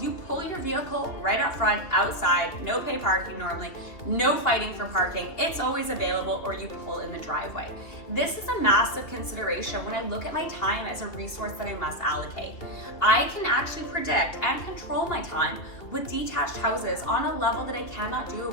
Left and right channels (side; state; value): right; late; 2.5 ms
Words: you pull your vehicle right up front, outside, no pay parking normally, no fighting for parking. It's always available, or you pull in the driveway. This is a massive consideration when I look at my time as a resource that I must allocate. I can actually predict and control my time with detached houses on a level that I cannot do